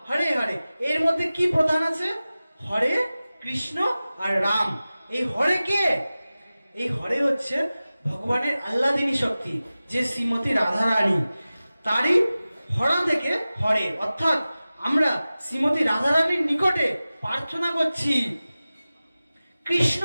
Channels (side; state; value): both; inverted; correlation -0.96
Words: হরে হরে, এর মধ্যে কি প্রধান আছে? হরে কৃষ্ণ আর রাম। এই হরে কে? এই হরে হচ্ছে ভগবানের আহ্লাদিনী শক্তি, যে শ্রীমতী রাধারানী, তারই হরা থেকে হরে, অর্থাৎ আমরা শ্রীমতী রাধারানীর নিকটে প্রার্থনা করছি। কৃষ্ণ